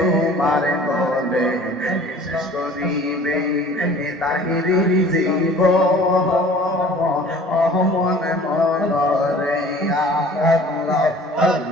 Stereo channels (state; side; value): normal; both; correlation 0.48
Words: গলে শেষ করিবে তাহিরির জীব মন মন রে আল্লাহ